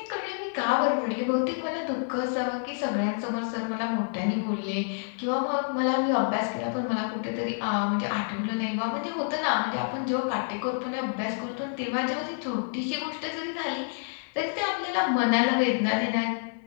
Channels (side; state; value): right; silent; 59 dB below the other